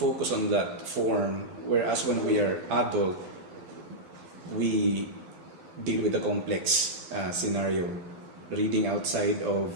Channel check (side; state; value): left; late; 12 ms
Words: on that form, whereas when we are adult, we deal with the complex scenario, reading outside of